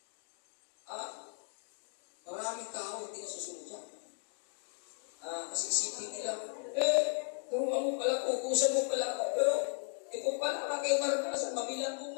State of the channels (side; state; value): right; silent; 54 dB below the other